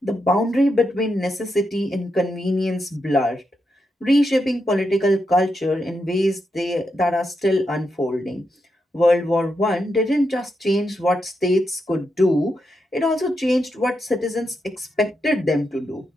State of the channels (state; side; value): normal; both; correlation 0.84